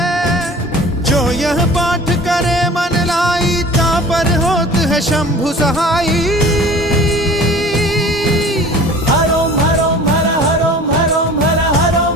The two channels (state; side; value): normal; both; correlation 0.43